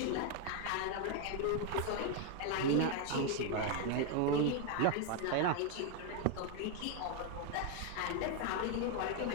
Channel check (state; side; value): different; both; correlation 0.01